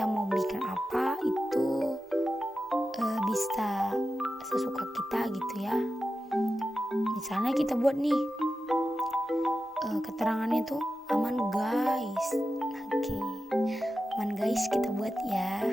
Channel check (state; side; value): normal; both; correlation 0.92